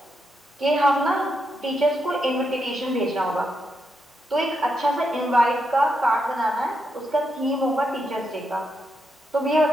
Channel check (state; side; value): normal; both; correlation 0.83